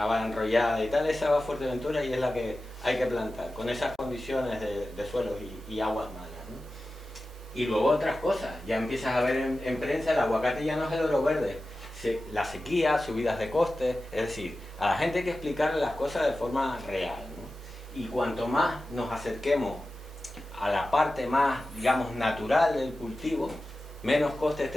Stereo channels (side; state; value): both; normal; correlation 0.94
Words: enrollada y tal, esa va a Fuerteventura y es la que hay que plantar, con esas condiciones de suelos y aguas malas, ¿no? Y luego otras cosas. Ya empiezas a ver en prensa, el aguacate ya no es el oro verde. La sequía, subidas de costes, es decir, a la gente hay que explicarle las cosas de forma real, ¿no? Y cuanto más nos acerquemos a la parte más, digamos, natural del cultivo, menos costes